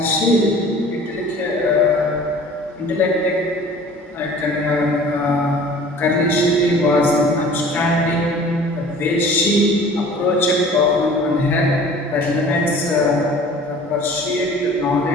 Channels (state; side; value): normal; both; correlation 0.46